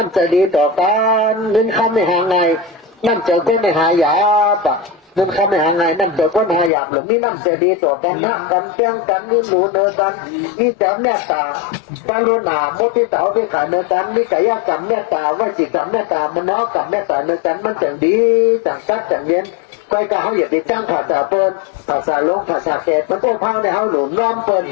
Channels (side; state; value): right; drops out; at 6.7 s